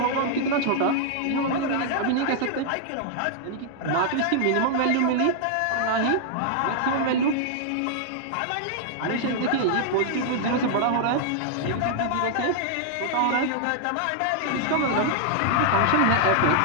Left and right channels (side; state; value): both; different; correlation -0.01